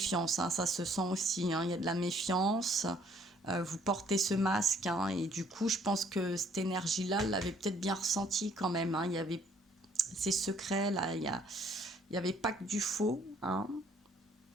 hein, ça se sent aussi, hein, il y a de la méfiance. Vous portez ce masque, hein, et du coup, je pense que cette énergie-là, elle l'avait peut-être bien ressenti quand même, hein. Il y avait ces secrets, là, il n'y avait pas que du faux, hein.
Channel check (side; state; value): both; normal; correlation 0.63